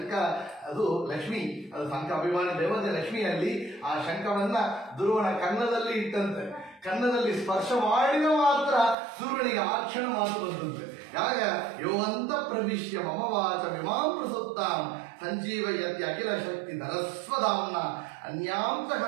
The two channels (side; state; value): left; drops out; at 9.0 s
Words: ಅದು ಲಕ್ಷ್ಮಿ, ಅದು ಶಂಖ ಅಭಿಮಾನಿ ದೇವತೆ ಲಕ್ಷ್ಮಿಯಲ್ಲಿ ಆ ಶಂಖವನ್ನ ಧ್ರುವನ ಕನ್ನದಲ್ಲಿ ಇಟ್ಟಂತೆ. ಕನ್ನದಲ್ಲಿ ಸ್ಪರ್ಶ ಮಾಡಿದ ಮಾತ್ರ ಸೂರ್ಯನಿಗೆ ಆ ಕ್ಷಣ ಮಾತು ಬಂದಂತೆ. ಯಾಗ ಯೋವಂತ ಪ್ರವಿಶ್ಯ ಮಮ ವಾಚ ವಿಮಾಂ ಪ್ರಸುತ್ತಾಂ ಸಂಜೀವಯತಿ ಅಖಿಲ ಶಕ್ತಿ ಧರಸ್ವಧಾಮ್ನ ಅನ್ಯಾಂತ